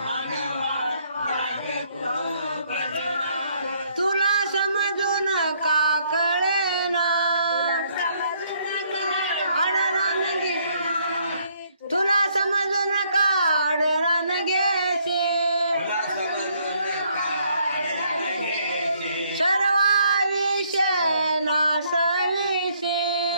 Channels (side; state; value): both; inverted; correlation -0.68